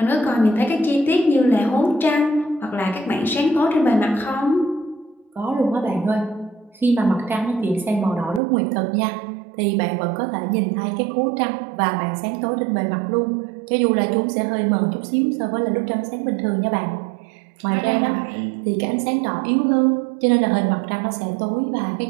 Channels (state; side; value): drops out; left; at 8.4 s